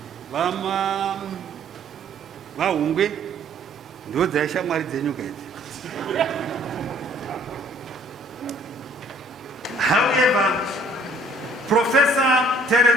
vahungwe ndo dzaishamwari dzenyuka idzi. However, Professor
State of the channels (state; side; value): normal; both; correlation 0.58